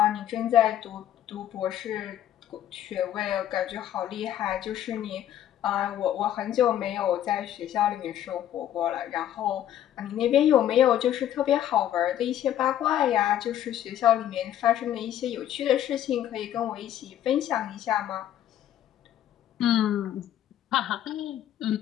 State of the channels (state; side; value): quieter; right; 11.4 dB